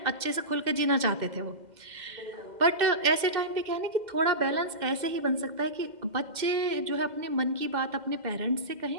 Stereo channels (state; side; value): late; left; 2.1 ms